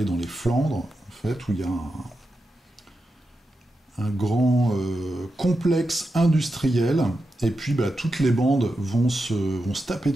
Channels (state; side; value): normal; both; correlation 0.88